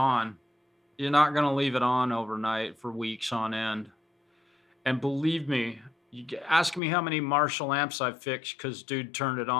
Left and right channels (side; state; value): right; drops out; at 6.8 s